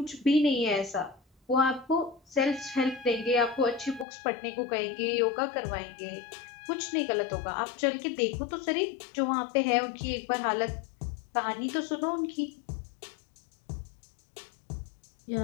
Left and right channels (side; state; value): right; drops out; at 4.0 s